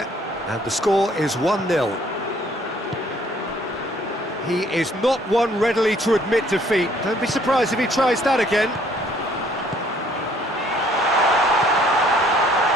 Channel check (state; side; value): normal; both; correlation 0.61